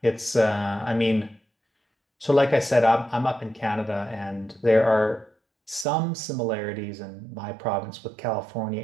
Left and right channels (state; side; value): drops out; left; at 5.9 s